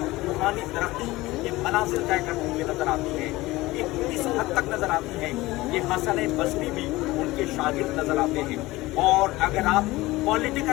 रूहानी तरक्की के मनाजिल तय करती हुई नज़र आती हैं। इस हद तक नज़र आती हैं कि हसन बसरी भी उनके शागिर्द नज़र आते हैं। और अगर आप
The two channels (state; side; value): quieter; right; 19.3 dB